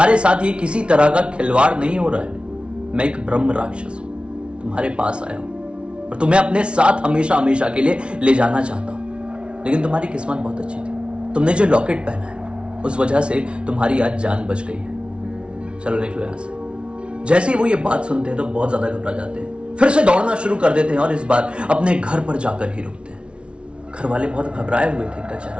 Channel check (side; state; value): left; late; 0.059 ms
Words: साथ ये किसी तरह का खिलवाड़ नहीं हो रहा है। मैं एक ब्रह्म राक्षस हूं, तुम्हारे पास आया हूं और तुम्हें अपने साथ हमेशा हमेशा के लिए ले जाना चाहता हूं। लेकिन तुम्हारी किस्मत बहुत अच्छी थी, तुमने जो लॉकेट पहना है उस वजह से तुम्हारी आज जान बच गई है। चलो निकलो यहां से। जैसे ही वो ये बात सुनते हैं तो बहुत ज्यादा घबरा जाते हैं, फिर से दौड़ना शुरू कर देते हैं और इस बार अपने घर पर जाकर ही रुकते हैं। घर वाले बहुत घबराए हुए थे इनका